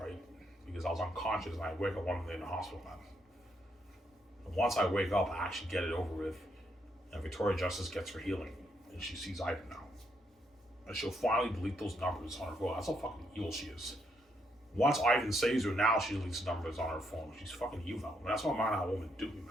right? Because I was unconscious and I wake up 1 minute in the hospital, man. And once I wake up, I actually get it over with, and Victoria Justice gets her healing, and she sees Ivan now, and she'll finally delete those numbers on her phone. That's how fucking evil she is. Once Ivan saves her, now she deletes numbers on her phone. She's fucking evil. And that's what man how woman do me,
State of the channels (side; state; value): both; normal; correlation 0.76